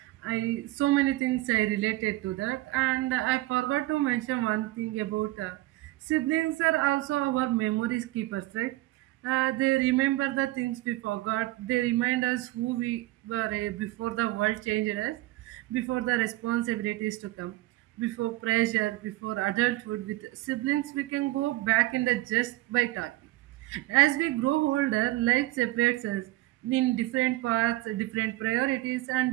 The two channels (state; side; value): quieter; left; 18.4 dB